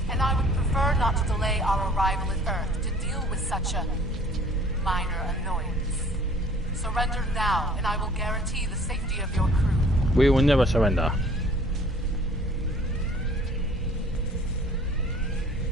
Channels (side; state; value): both; normal; correlation 0.53